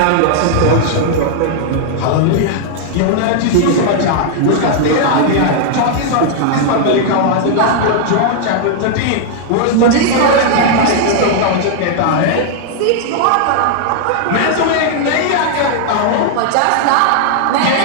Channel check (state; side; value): different; both; correlation -0.01